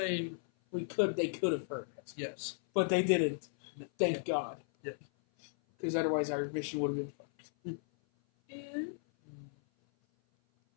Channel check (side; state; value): right; silent; 54 dB below the other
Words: They could have heard it. Yes. But they didn't. Thank God. Yeah. Because otherwise our mission would have been fucked. Yeah.